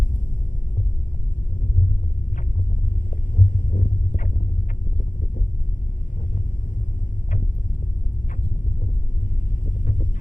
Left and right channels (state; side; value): late; right; 0.37 ms